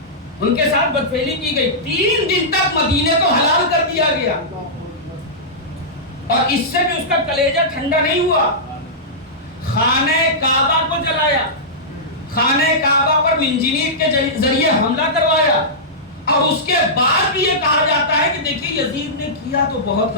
ان کے ساتھ بدفعلی کی گئی۔ 3 دن تک مدینے کو حلال کر دیا گیا اور اس سے بھی اس کا کلیجہ ٹھنڈا نہیں ہوا۔ خانہ کعبہ کو جلایا، خانہ کعبہ پر منجنیق کے ذریعے حملہ کروایا، اور اس کے بعد بھی یہ کہا جاتا ہے کہ دیکھیے یزید نے کیا تو بہت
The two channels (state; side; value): normal; both; correlation -0.14